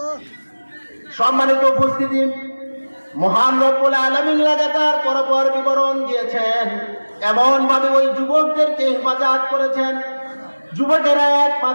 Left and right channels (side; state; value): both; inverted; correlation -1.00